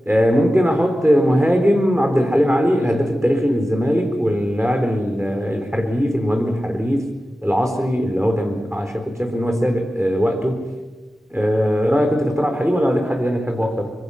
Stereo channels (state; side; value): normal; both; correlation 0.94